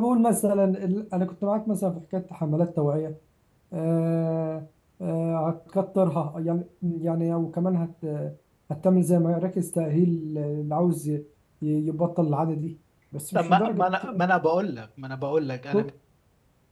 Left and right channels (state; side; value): identical; both; correlation 1.00